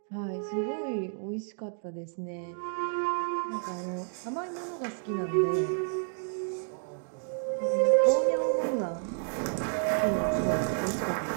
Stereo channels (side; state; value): left; silent; 58 dB below the other